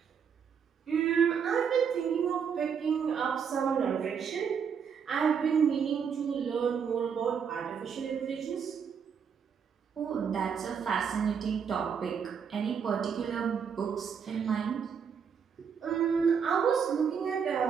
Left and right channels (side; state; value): left; quieter; 7.0 dB